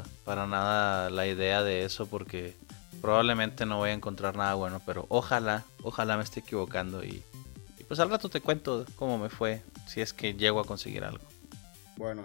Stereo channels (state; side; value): quieter; right; 34.5 dB